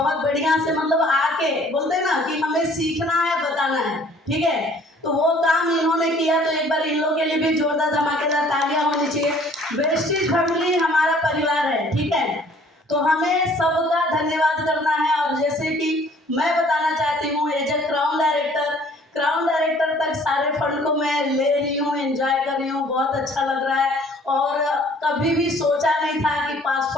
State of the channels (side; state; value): both; normal; correlation 0.56